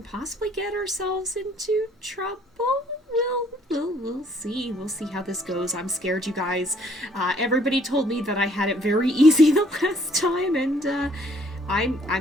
possibly get ourselves into trouble. We'll see. We'll see how this goes. I'm scared, you guys. Everybody told me that I had it very easy the last time, and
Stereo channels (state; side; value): normal; both; correlation 0.62